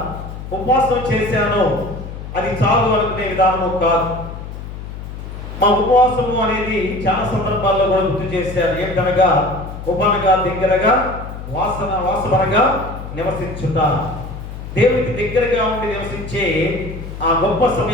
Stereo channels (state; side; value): noise; left; hum, 10 dB below the sound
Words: ఉపవాసం చేశాను అది చాలు అనుకునే విధానము కాదు. మా ఉపవాసము అనేది చాలా సందర్భాల్లో కూడా గుర్తు చేశారు. ఏంటనగా ఉపనగా దగ్గరగా వాసనగా నివసించుట, దేవునికి దగ్గరగా ఉండి నివసించే ఆ గొప్ప